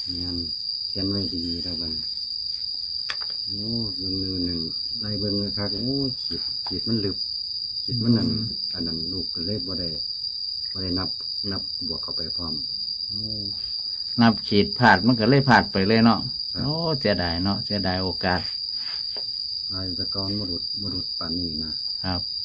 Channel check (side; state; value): both; identical; correlation 1.00